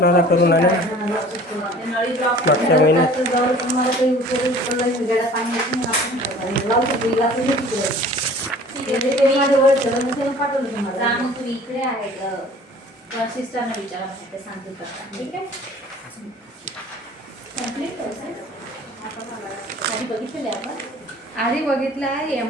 होता करून आले मागच्या महिन्यात. इकडे आहे सिस्टरने विचारा ते सांगते ठीक आहे. आधी बघितलं आहे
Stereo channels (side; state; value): both; normal; correlation 0.47